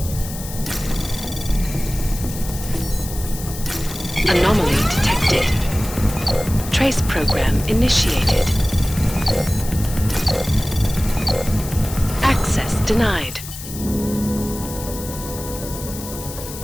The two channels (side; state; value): left; noise; hiss, 11 dB below the sound